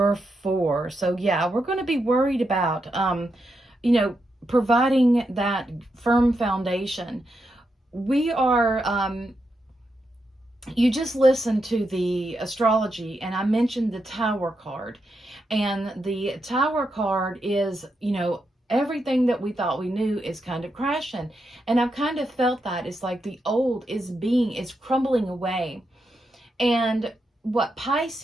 4. So yeah, we're going to be worried about, providing that firm foundation. We are, you just listened to the astrology, and I mentioned the Tower card. And the Tower card is, everything that we thought we knew is kind of crashing. And I've kind of felt that. It's like the old is crumbling away. And what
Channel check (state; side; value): normal; both; correlation 0.84